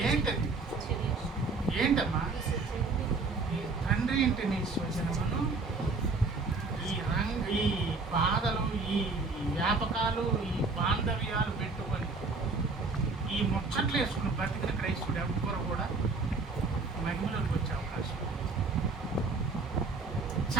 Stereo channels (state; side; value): quieter; left; 3.9 dB